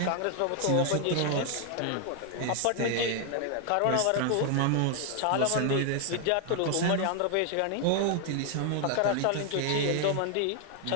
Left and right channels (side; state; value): both; different; correlation 0.00